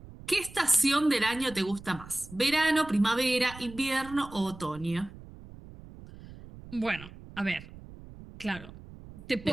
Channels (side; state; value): right; noise; rumble, 17 dB below the sound